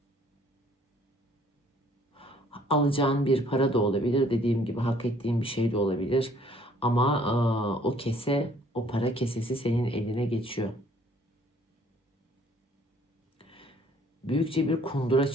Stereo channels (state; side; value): normal; both; correlation 0.60